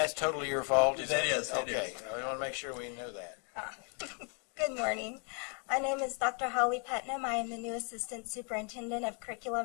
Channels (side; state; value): right; quieter; 36.4 dB